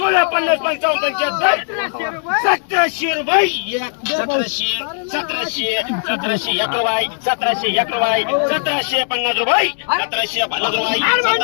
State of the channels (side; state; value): right; silent; digital silence